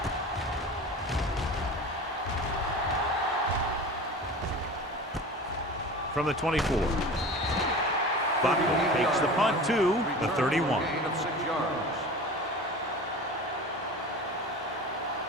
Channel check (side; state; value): both; normal; correlation 0.35